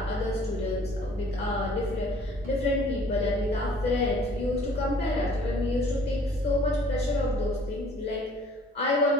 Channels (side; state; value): both; normal; correlation 0.54